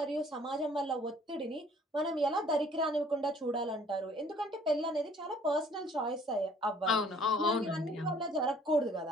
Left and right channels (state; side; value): normal; both; correlation 0.57